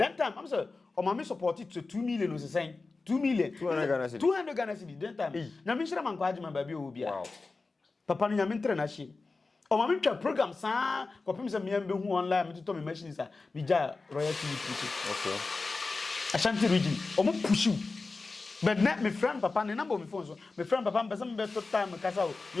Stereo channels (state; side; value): quieter; right; 3.8 dB